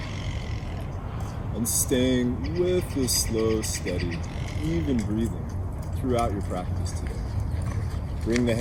And staying with this slow, steady, even breathing throughout your practice today. Bring the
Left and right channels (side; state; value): both; identical; correlation 1.00